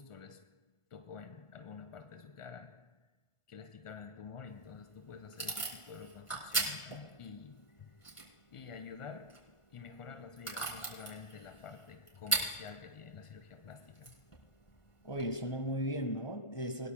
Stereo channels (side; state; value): right; late; 1.5 ms